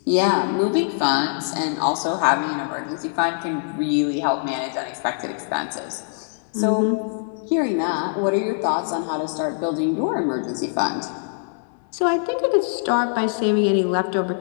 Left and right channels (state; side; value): silent; right; digital silence